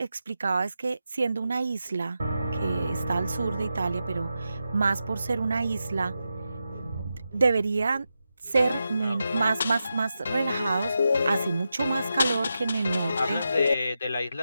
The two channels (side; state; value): both; inverted; correlation -0.89